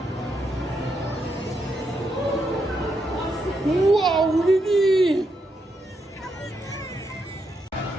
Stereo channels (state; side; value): normal; both; correlation 0.81